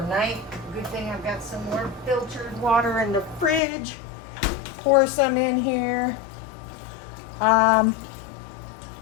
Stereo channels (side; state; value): right; drops out; at 3.6 s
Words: Good thing I've got some more filtered water in the fridge. Pour some in here.